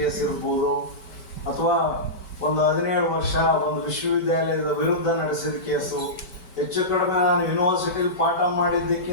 ಇರ್ಬೋದು, ಅಥವಾ ಒಂದು 17 ವರ್ಷ ಒಂದು ವಿಶ್ವವಿದ್ಯಾಲಯದ ವಿರುದ್ಧ ನಡೆಸಿದ ಕೇಸು, ಹೆಚ್ಚು ಕಡಿಮೆ ನಾನು ಯೂನಿವರ್ಸಿಟಿಲಿ ಪಾಠ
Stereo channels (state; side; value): late; right; 5.2 ms